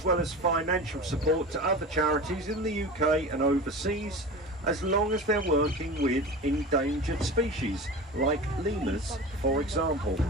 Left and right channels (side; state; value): both; normal; correlation 0.32